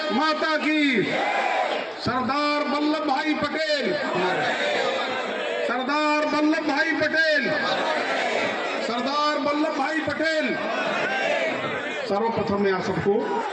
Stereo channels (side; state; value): both; identical; correlation 1.00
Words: माता की। सरदार वल्लभ भाई पटेल, सरदार वल्लभ भाई पटेल, सरदार वल्लभ भाई पटेल। सर्वप्रथम मैं आप सबको,